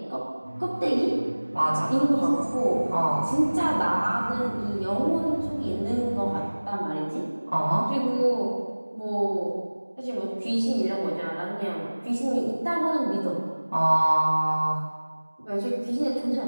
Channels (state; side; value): inverted; both; correlation -1.00